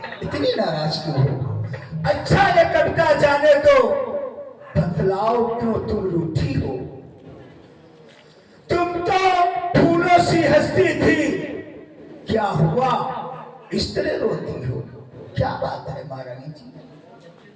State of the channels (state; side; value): identical; both; correlation 1.00